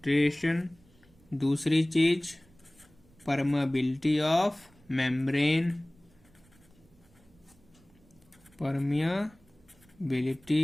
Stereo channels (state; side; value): noise; right; rumble, 30 dB below the sound